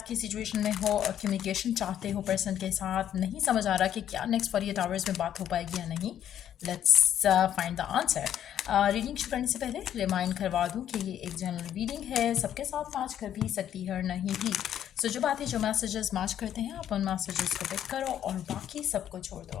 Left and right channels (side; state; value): right; quieter; 10.4 dB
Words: की सिचुएशन में हो और कम्युनिकेशन चाहते हो पर्सन के साथ, नहीं समझ आ रहा कि क्या नेक्स्ट 48 आवर्स में बात हो पाएगी या नहीं, let's find the answer. Reading शुरू करने से पहले रिमाइंड करवा दूं कि ये एक जनरल रीडिंग है, सबके साथ मैच कर भी सकती है और नहीं भी। सो जो बातें जो मैसेजेस मैच करते हैं आप उन मैसेजेस को पिक करो और बाकी सबको छोड़ दो।